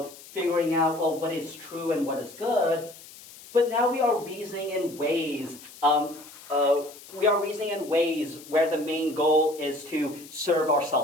figuring out, well, what is true and what is good, but now we are reasoning in ways where the main goal is to serve our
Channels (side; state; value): left; noise; hiss, 19 dB below the sound